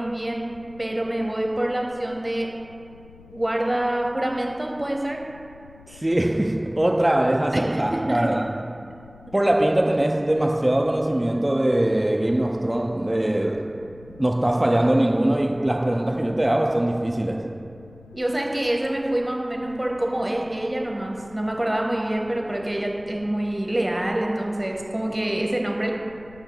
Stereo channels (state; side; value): noise; left; rumble, 23 dB below the sound